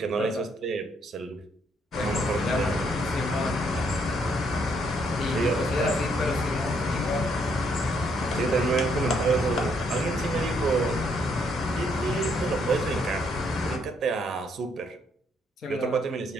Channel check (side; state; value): both; normal; correlation 0.71